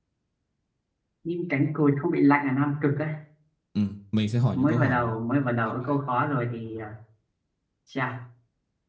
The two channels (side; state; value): both; identical; correlation 1.00